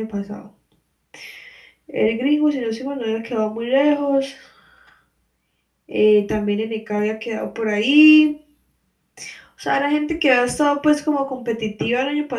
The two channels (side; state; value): both; identical; correlation 1.00